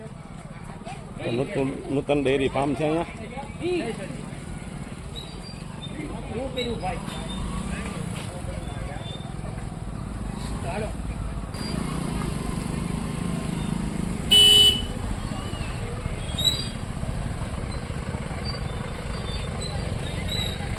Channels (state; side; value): identical; both; correlation 1.00